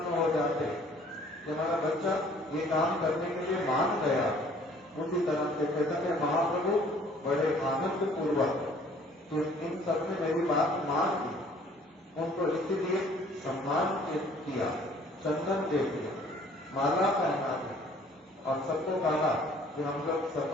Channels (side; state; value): both; normal; correlation 0.56